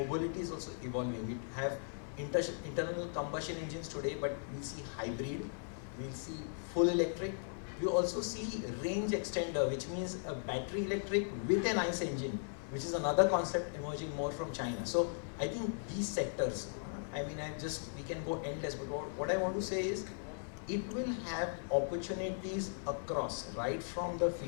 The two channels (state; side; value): silent; right; digital silence